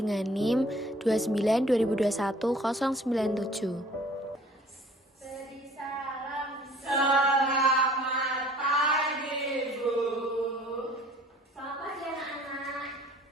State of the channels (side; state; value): both; normal; correlation 0.52